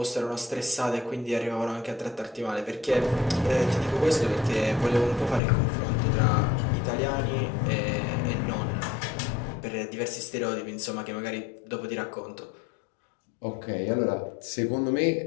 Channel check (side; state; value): right; drops out; at 5.4 s